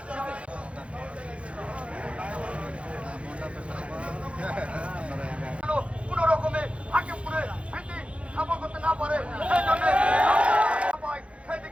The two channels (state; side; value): late; left; 0.061 ms